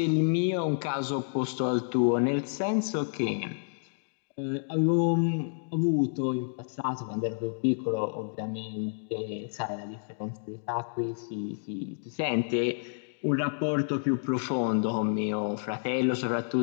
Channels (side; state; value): right; silent; digital silence